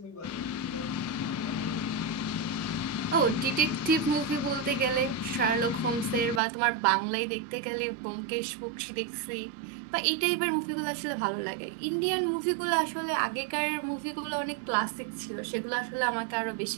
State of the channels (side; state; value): left; drops out; at 6.4 s